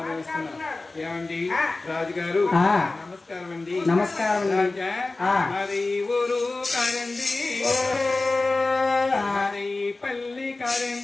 ఏమండి రాజుగారు నమస్కారం అండి. నమస్కారం రాజా మరి ఊరు కారండి మరి పల్లి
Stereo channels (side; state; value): right; quieter; 3.3 dB